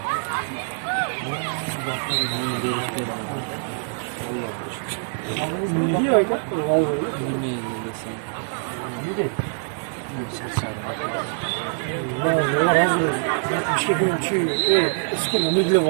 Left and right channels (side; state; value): left; silent; digital silence